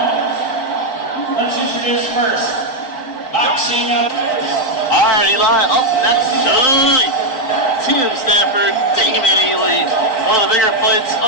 Let's introduce first, boxing up. All right, Eli, up next tonight, Tim Stafford, Damon Ely, one of the bigger fights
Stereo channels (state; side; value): late; right; 4.5 ms